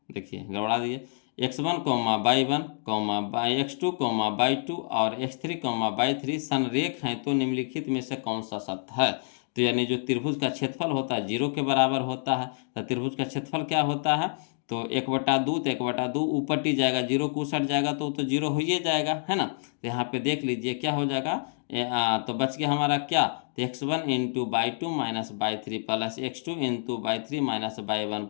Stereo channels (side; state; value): right; silent; digital silence